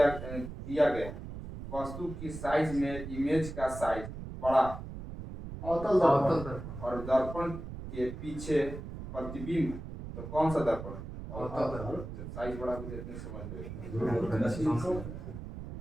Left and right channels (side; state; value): right; noise; rumble, 9 dB below the sound